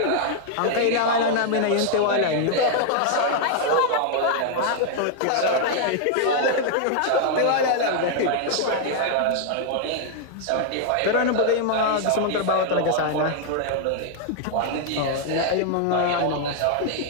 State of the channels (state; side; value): different; both; correlation -0.01